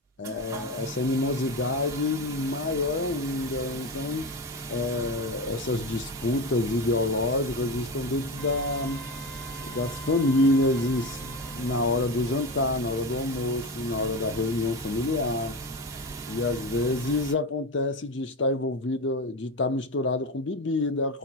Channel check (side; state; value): both; normal; correlation 0.22